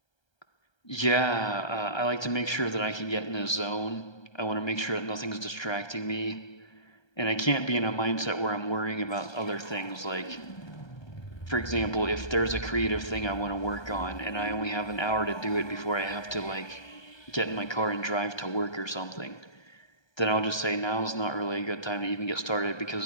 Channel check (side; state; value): right; late; 1.3 ms